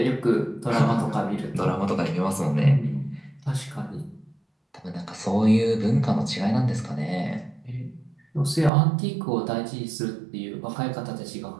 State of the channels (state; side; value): drops out; left; at 8.7 s